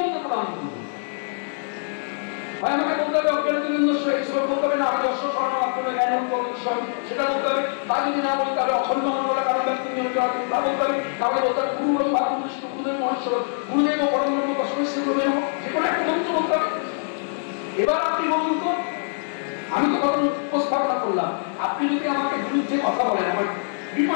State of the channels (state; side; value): silent; right; digital silence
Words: প্রণাম করবো? আমাকে বলতে হবে বলতে হবে না, আমি দর্শক সেটা বলতে হবে। তা যদি না বলতে হবে অখণ্ড মন্ডল কারণ ব্যক্তি তা বলতে হবে। তাহলে বলতে হবে গুরু গুরুদেব মহেশ্বর গুরুদেব ও পরম ব্রহ্ম তস্মৈ গুরুদেব, যে কোনো একটা মন্ত্র বলতে হবে। এবার আপনি বলুন তো, আমি তো কথা উপস্থাপনা করলাম, আপনি যদি আমাকে বিরুদ্ধে কথা বলেন আমার